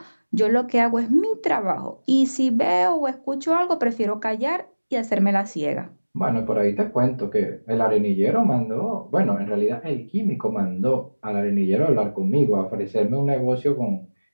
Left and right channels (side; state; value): both; inverted; correlation -1.00